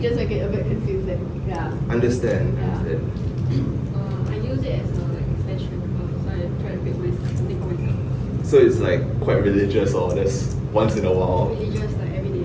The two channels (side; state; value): both; identical; correlation 1.00